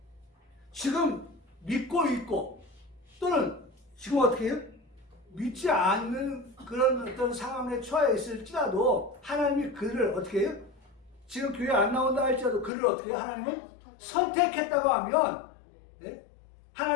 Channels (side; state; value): right; drops out; at 12.7 s